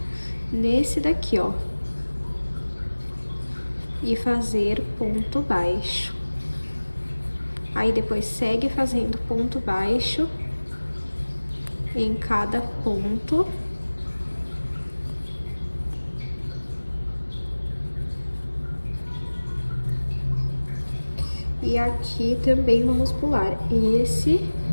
nesse daqui, ó. E fazer ponto baixo. Aí, depois segue fazendo ponto baixo em cada ponto. E aqui também vamos pular esse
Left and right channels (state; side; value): inverted; both; correlation -1.00